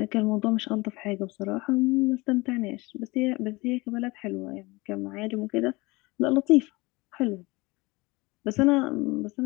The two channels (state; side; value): quieter; right; 23.3 dB